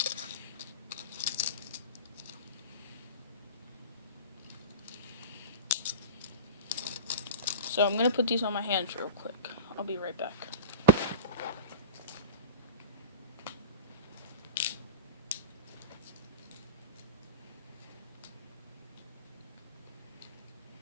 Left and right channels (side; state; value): both; inverted; correlation -0.34